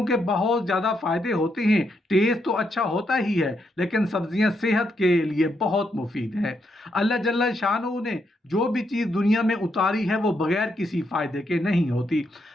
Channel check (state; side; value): normal; both; correlation 0.79